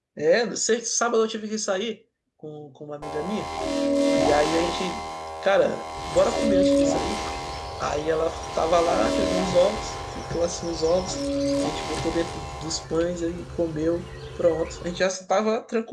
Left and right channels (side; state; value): both; identical; correlation 1.00